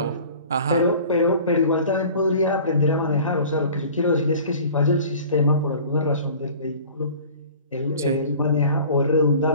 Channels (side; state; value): both; inverted; correlation -0.45